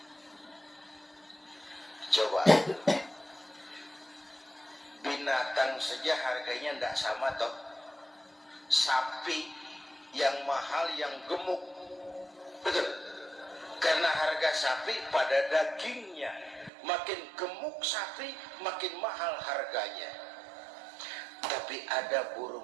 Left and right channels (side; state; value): left; drops out; at 16.7 s